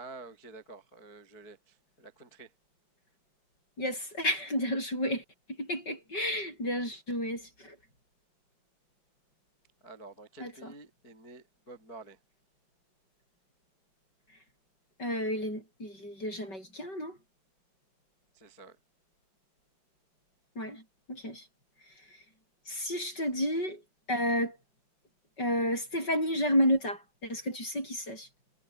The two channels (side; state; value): right; late; 5.2 ms